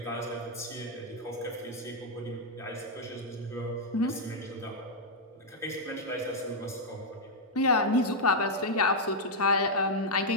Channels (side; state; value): both; normal; correlation -0.03